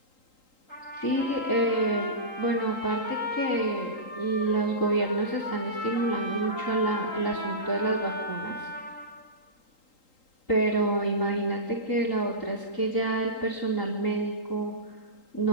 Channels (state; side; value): late; right; 3.8 ms